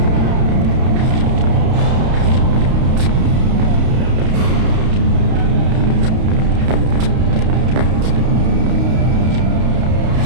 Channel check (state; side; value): late; left; 32 ms